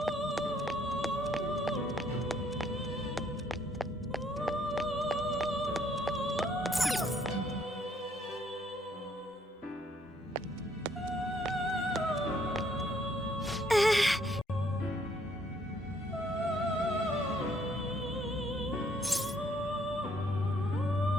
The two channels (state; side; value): normal; both; correlation 0.66